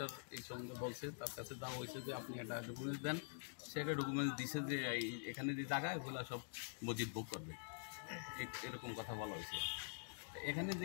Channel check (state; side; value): silent; right; digital silence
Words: এই সঙ্গে বলছে, তার কাছে দেওয়া হয়েছে যে আপনি একটা ডকুমেন্টস দেন, সে একটা ডকুমেন্টস দিছে যে এখানে যে জায়গা এগুলো সব মসজিদ বুক করবে, এরকম কথা বলা হয়েছে। এখানে